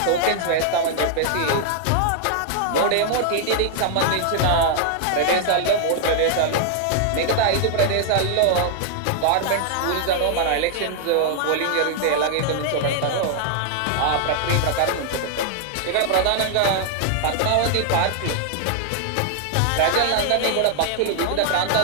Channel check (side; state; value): both; different; correlation 0.00